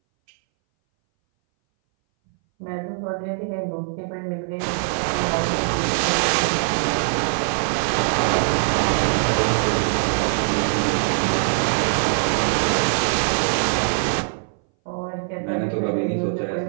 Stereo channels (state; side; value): silent; left; 61 dB below the other